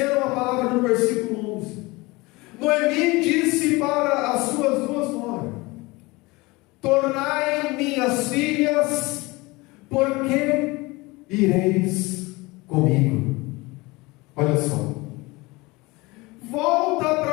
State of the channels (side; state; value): right; quieter; 23.1 dB